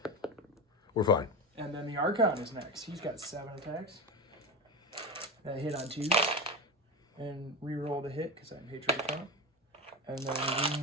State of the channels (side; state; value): both; normal; correlation 0.20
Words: We're fine. And then the Archon is next. He's got 7 attacks. That hit on 2s. And reroll the hit because I'm Hatred Account. And then